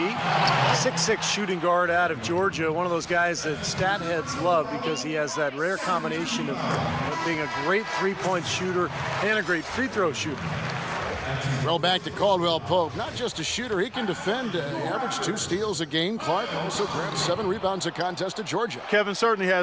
6'6" shooting guard out of Georgia. One of those guys that stat heads love because he has that rare combination of being a great three-point shooter and a great free throw shooter. Throw back to Caldwell Pope. Not just a shooter, he can defend. Averaged 2 steals a game. Clark also grabbed 7 rebounds a contest at Georgia. Kevin certainly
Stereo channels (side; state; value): both; identical; correlation 1.00